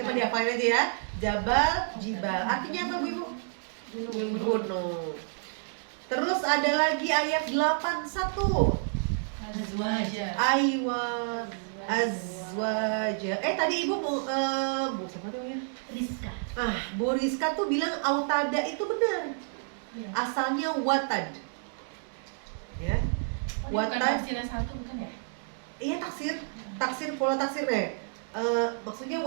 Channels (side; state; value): left; silent; digital silence